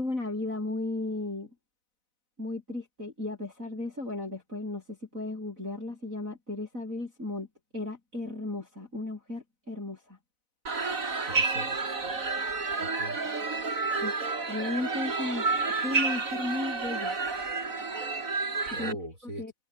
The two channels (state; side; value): late; left; 4.0 ms